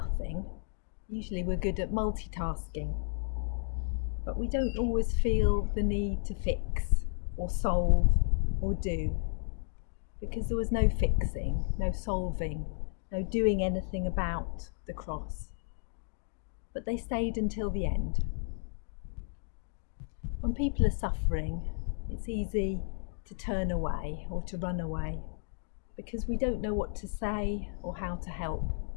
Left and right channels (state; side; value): silent; right; 56 dB below the other